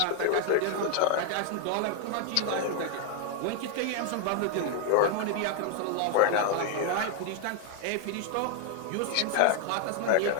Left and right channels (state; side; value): different; both; correlation 0.00